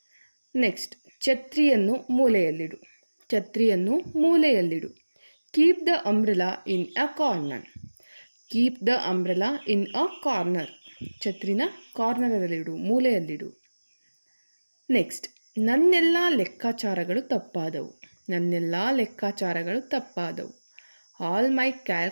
ನೆಕ್ಸ್ಟ್, ಛತ್ರಿಯನ್ನು ಮೂಲೆಯಲ್ಲಿಡು. ಛತ್ರಿಯನ್ನು ಮೂಲೆಯಲ್ಲಿಡು. Keep the umbrella in a corner. Keep the umbrella in a corner. ಛತ್ರಿನ ಕಾರ್ನರಲ್ಲಿಡು, ಮೂಲೆಯಲ್ಲಿಡು. ನೆಕ್ಸ್ಟ್, ನನ್ನೆಲ್ಲ ಲೆಕ್ಕಾಚಾರಗಳು ತಪ್ಪಾದವು. ನನ್ನೆಲ್ಲ ಲೆಕ್ಕಾಚಾರಗಳು ತಪ್ಪಾದವು. All my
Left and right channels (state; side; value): inverted; both; correlation -1.00